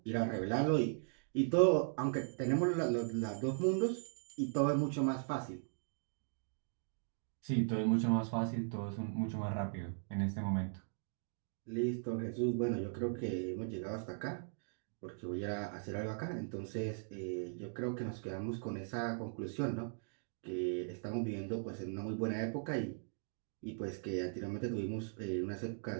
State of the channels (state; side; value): silent; left; digital silence